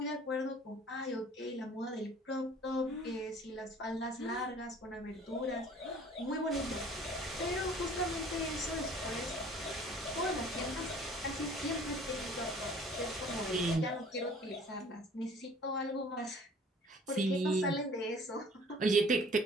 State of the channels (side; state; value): both; normal; correlation 0.51